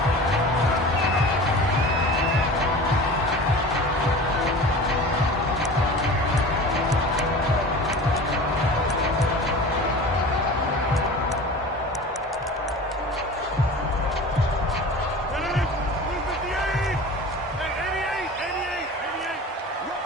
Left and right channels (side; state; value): both; normal; correlation 0.37